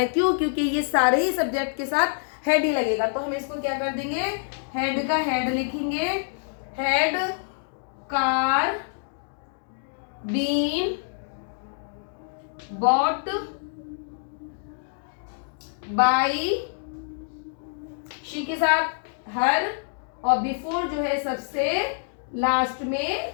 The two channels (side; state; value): right; silent; digital silence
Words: है। क्यों? क्योंकि ये सारे ही सब्जेक्ट के साथ हैड ही लगेगा। तो हम इसको क्या कर देंगे, हैड का हैड लिखेंगे, had car been bought by she के साथ हर, और बिफोर जो है सबसे लास्ट में